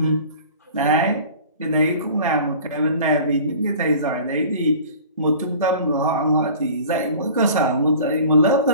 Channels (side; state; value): both; inverted; correlation -0.43